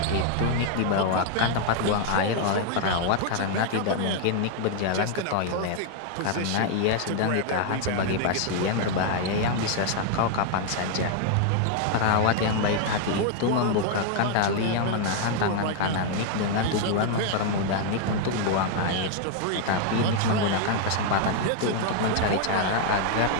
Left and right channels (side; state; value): both; different; correlation 0.00